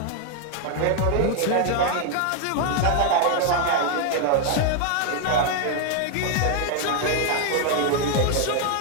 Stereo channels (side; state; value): both; different; correlation 0.00